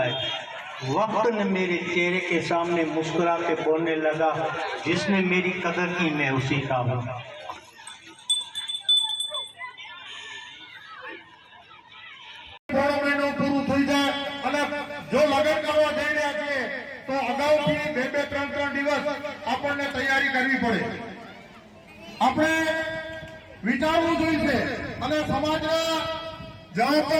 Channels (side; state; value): both; identical; correlation 1.00